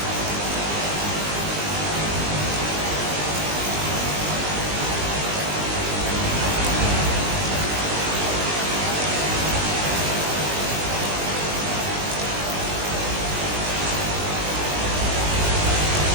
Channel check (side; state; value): left; late; 20 ms